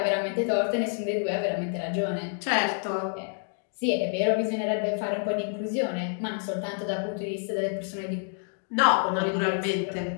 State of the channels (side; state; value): right; silent; 58 dB below the other